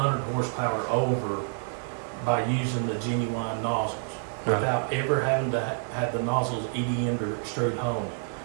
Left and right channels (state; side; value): silent; left; digital silence